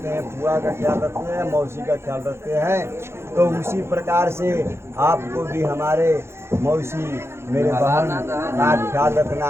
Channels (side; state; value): left; late; 0.12 ms